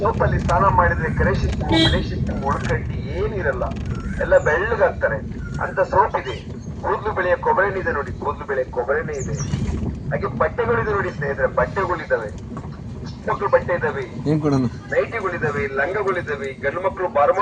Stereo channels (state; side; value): identical; both; correlation 1.00